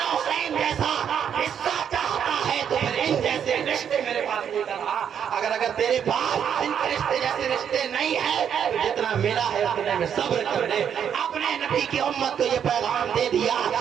حسین جیسا حصہ چاہتا ہے تو پھر ان جیسے رشتے میرے پاس لے کر آ۔ اگر تیرے پاس ان کے رشتے جیسے رشتے نہیں ہے تو جتنا ملا ہے اتنے میں صبر کر لے۔ اپنے نبی کی امت کو یہ پیغام دے دیا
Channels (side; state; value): left; quieter; 8.4 dB